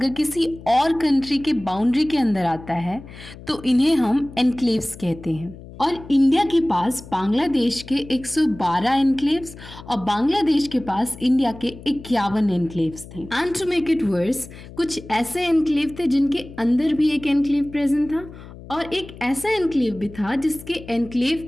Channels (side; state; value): left; noise; hum, 16 dB below the sound